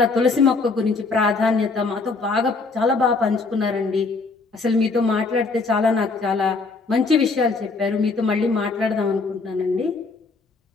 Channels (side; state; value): right; quieter; 4.0 dB